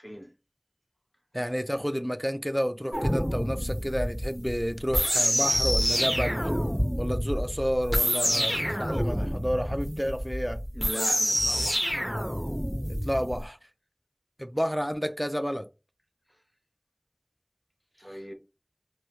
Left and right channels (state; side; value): identical; both; correlation 1.00